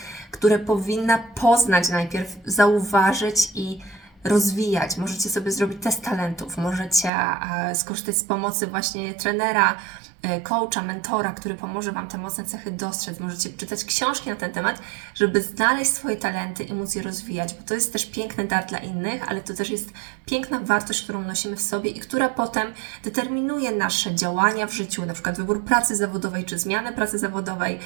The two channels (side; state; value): left; drops out; at 7.1 s